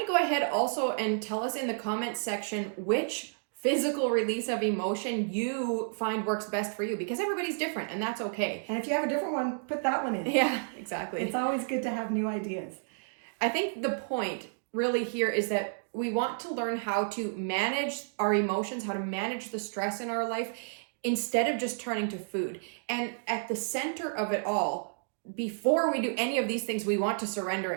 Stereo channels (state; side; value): silent; left; digital silence